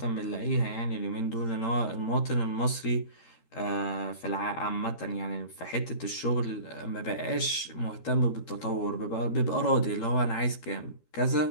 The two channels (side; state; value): right; late; 13 ms